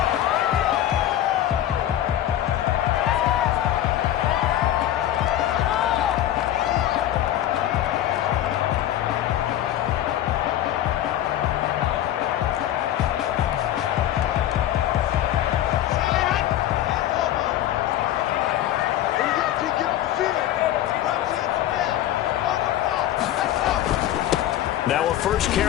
Now a first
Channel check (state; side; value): quieter; right; 12.5 dB